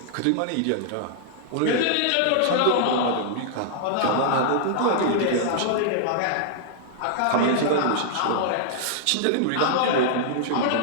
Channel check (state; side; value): different; both; correlation -0.01